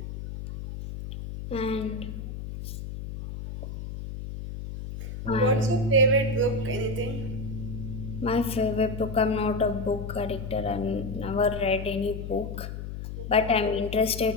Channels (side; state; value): left; noise; hum, 8 dB below the sound